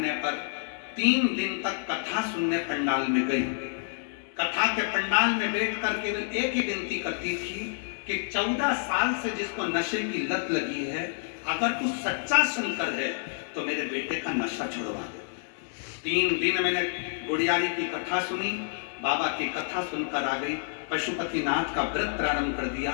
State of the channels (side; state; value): right; silent; digital silence